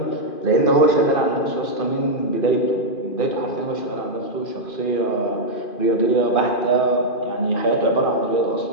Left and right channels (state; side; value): late; right; 2.5 ms